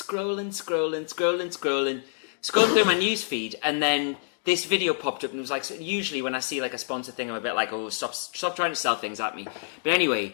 through my news feed, and then this video popped up, and it was like, so usually when I see like a sponsor thing, I'm a bit like, oh, stop trying to sell things at me. But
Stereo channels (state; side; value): silent; right; digital silence